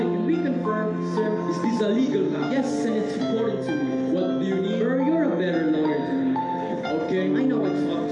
Can we confirm, sir? is this a legal matter? Yes, and it's important to me. What do you need? Sir, you're a better lawyer than me. Okay. I know I talk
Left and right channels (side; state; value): both; identical; correlation 1.00